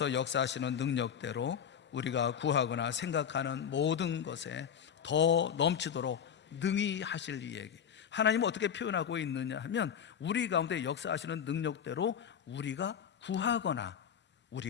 역사하시는 능력대로 우리가 구하거나 생각하는 모든 것에 더 넘치도록 능히 하실 이에게. 하나님은 어떻게 표현하고 있느냐 하면 우리 가운데 역사하시는 능력대로 우리가 구하거나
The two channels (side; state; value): right; quieter; 8.1 dB